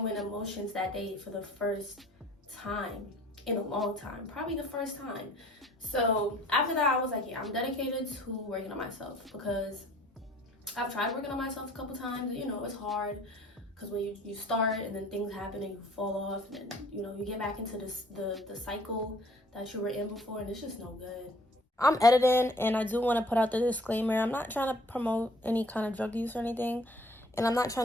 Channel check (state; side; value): normal; both; correlation 0.54